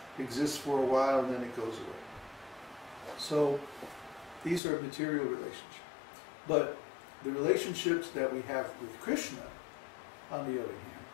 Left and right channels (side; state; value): right; drops out; at 4.6 s